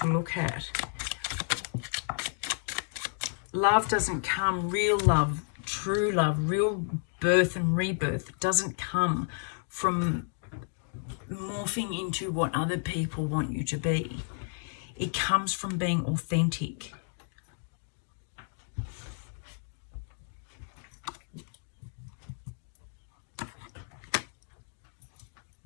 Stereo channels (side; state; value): right; silent; 57 dB below the other